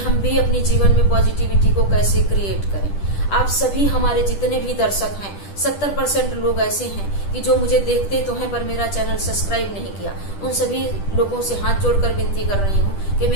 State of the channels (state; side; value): late; right; 10 ms